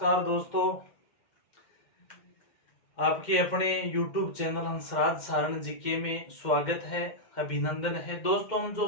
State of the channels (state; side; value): late; right; 2.1 ms